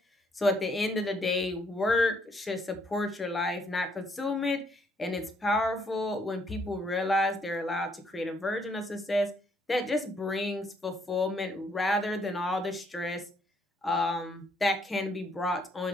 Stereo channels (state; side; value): normal; both; correlation 0.69